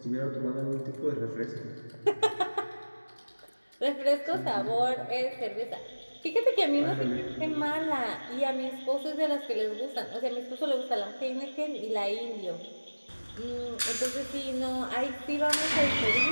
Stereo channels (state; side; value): inverted; both; correlation -1.00